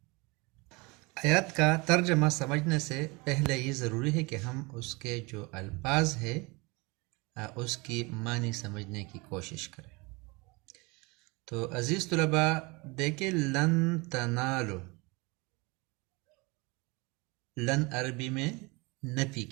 آیات کا ترجمہ سمجھنے سے پہلے یہ ضروری ہے کہ ہم اس کے جو الفاظ ہے اس کی معنی سمجھنے کی کوشش کریں۔ تو عزیز طلباء دیکھیں، لن تنالو، لن عربی میں نفی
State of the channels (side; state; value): left; quieter; 26.6 dB